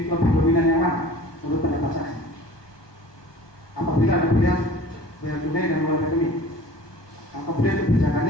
dominan yang mana menurut pendapat saksi? Apabila ada pilihan bayar tunai dan mulai rekening, kemudian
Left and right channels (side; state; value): right; late; 1.2 ms